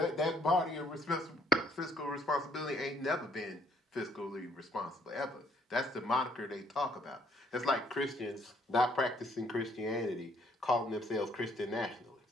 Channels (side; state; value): both; normal; correlation 0.64